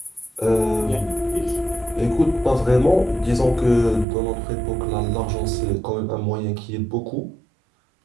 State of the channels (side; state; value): left; drops out; at 4.0 s